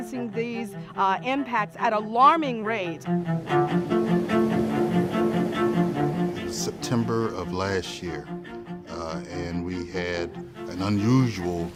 these impacts at alarming rates. September of last year, and we had an unusual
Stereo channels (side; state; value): both; identical; correlation 1.00